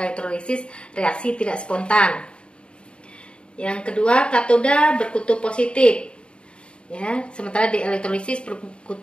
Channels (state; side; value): late; right; 0.054 ms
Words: elektrolisis reaksi tidak spontan. Yang kedua, katoda berkutub positif, ya, sementara di elektrolisis